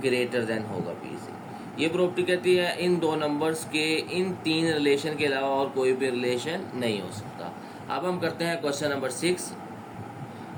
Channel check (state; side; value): identical; both; correlation 1.00